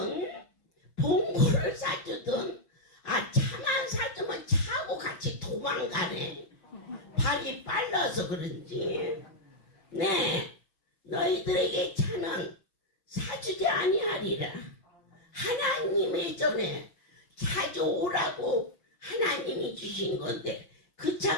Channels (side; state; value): right; late; 5.7 ms